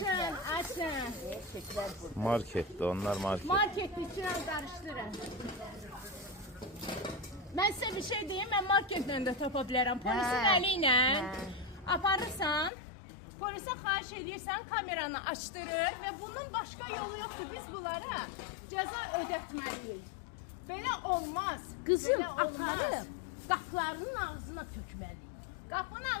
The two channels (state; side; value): drops out; right; at 12.7 s